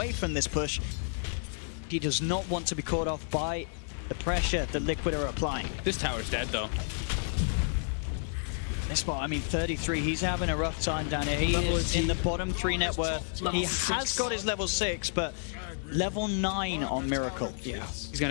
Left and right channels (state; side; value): silent; right; digital silence